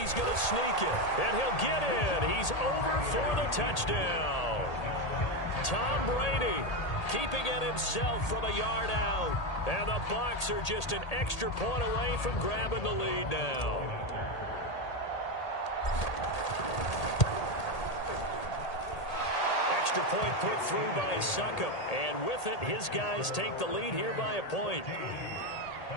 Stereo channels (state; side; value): late; right; 1.8 ms